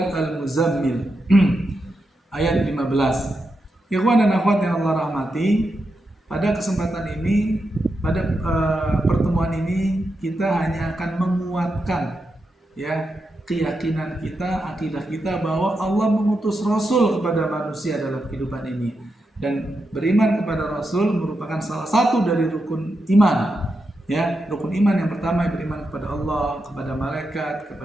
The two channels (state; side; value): normal; both; correlation 0.86